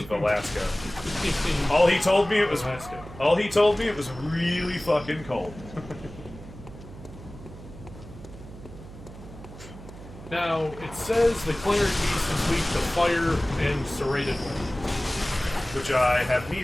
Alaska. All he told me it was really fucking cold. Now, it says the cleric beast is weak to fire and serrated weapons. Which I have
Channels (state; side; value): noise; right; hum, 15 dB below the sound